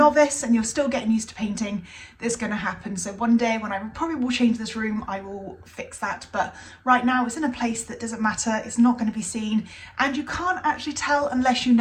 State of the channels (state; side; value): identical; both; correlation 1.00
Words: and you're still getting used to painting, it's going to happen. So one day when I probably will change this room, I will fix that. But right now it's in a place that doesn't matter, it's not going to be seen, and you can't actually tell unless you